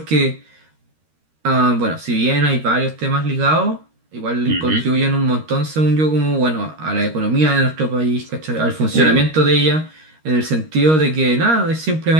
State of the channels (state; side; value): late; left; 13 ms